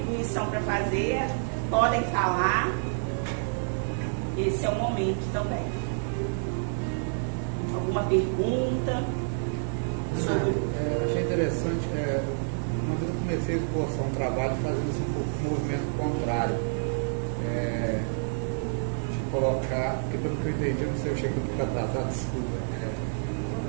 para fazer, podem falar. Esse é o momento também. Alguma pergunta? Achei interessante. Uma vez eu comecei a esboçar um trabalho fazendo assim, um pouco de movimento contrário. De colocar, porque pelo que eu entendi, não sei, eu cheguei um pouco atrasado, desculpa.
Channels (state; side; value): silent; left; digital silence